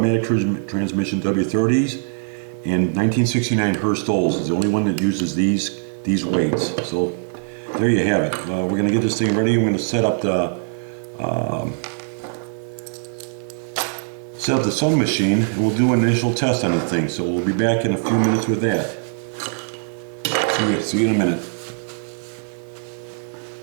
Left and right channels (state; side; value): silent; left; digital silence